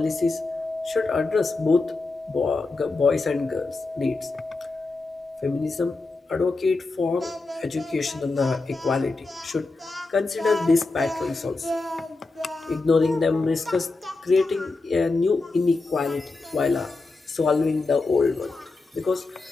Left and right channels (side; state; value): right; quieter; 3.5 dB